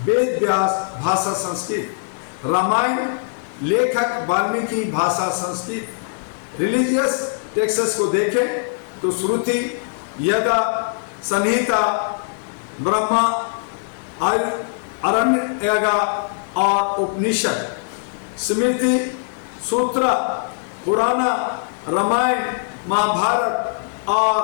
वेद व्यास भाषा संस्कृत, रामायण लेखक वाल्मीकि भाषा संस्कृत। रिलीजियस टेक्स्ट्स को देखें तो श्रुति, यदा, संहिता, ब्रह्मा, आरण्यका और उपनिषद, स्मृति, सूत्र, पुराण, रामायण, महाभारत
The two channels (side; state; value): right; silent; digital silence